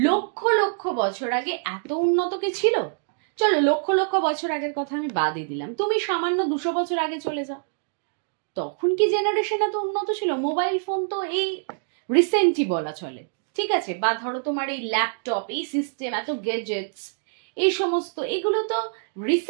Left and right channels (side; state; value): left; silent; digital silence